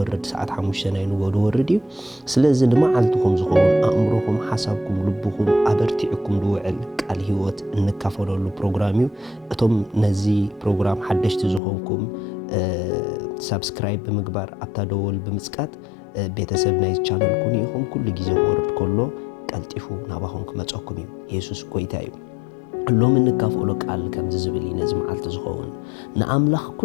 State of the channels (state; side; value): drops out; right; at 11.6 s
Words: ሰዓት 5 ናይ ንጎ ድወርድ እዩ ስለዚ ንመዓልትኩም ዝኸውን አእምሮኩም ሓሳብኩም ልብኩም አበርቲዕኩም ድውዕል ቃል ህይወት እንካፈለሉ ፕሮግራም እዩ እቶም ነዚ ፕሮግራም ሓደሽቲ ዝኾንኩም ሰብስክራይብ ብምግባር አብታደወል ብምጽቃት ቤተሰብ ናይ ቻናል ኩኒ ይኹም ኩሉ ግዜ ወርድ ኮሎ ቀልጢፉ ናባኹም ክመጽኩም እዩ ኢየሱስ ጎይታ እዩ ሎም እንካፈሎ ቃል ከም ዝብል ነዚ መዓልቲ ዝኸውን ንአምላኽ